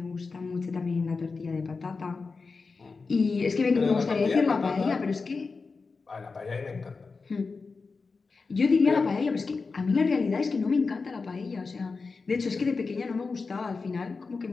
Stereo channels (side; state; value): right; quieter; 4.4 dB